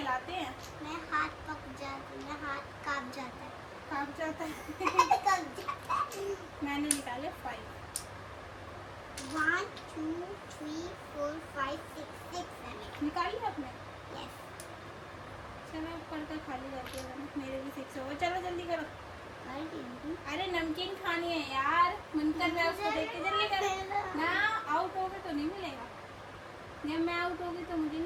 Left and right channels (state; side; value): identical; both; correlation 1.00